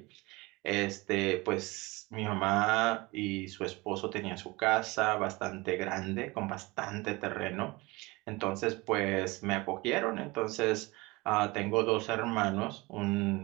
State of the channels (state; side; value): quieter; left; 23.2 dB